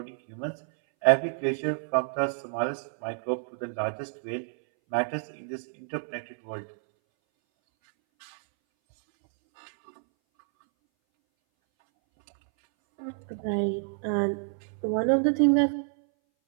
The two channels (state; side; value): silent; left; 59 dB below the other